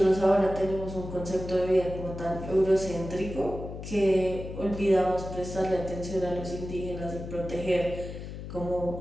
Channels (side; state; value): left; noise; hum, 9 dB below the sound